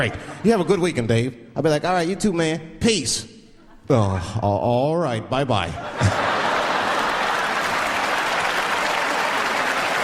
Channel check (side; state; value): both; identical; correlation 1.00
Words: You have a good weekend, Dave. I'll be like, "All right, you too, man. Peace." Oh, all right, bye-bye.